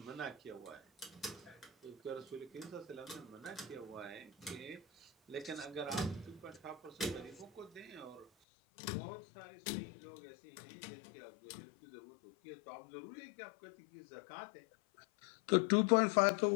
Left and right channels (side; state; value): right; drops out; at 8.2 s